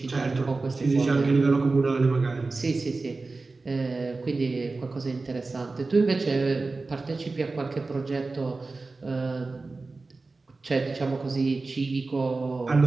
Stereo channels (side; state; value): left; quieter; 3.6 dB